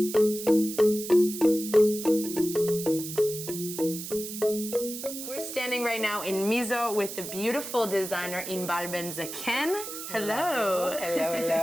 We're standing right now in Mizo with the beautiful designer Inbar Ben-Zaken. Hello. Hello,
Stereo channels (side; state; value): right; noise; hiss, 8 dB below the sound